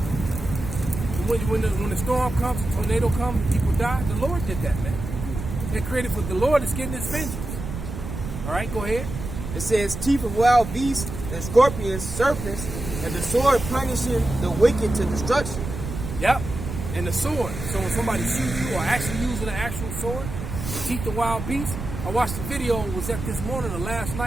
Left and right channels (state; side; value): noise; right; rumble, 7 dB below the sound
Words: when the storm comes, the tornado comes, and people die, the Lord did that, man. They're created for the Lord is getting his vengeance. All right, go ahead. It says, teeth of wild beasts and scorpions, serpents, and the sword punishing the wicked to destruction. Yep, and the sword. So when somebody shoots you or actually using an actual sword, the teeth of wild beasts. I watched the video, was that this morning or last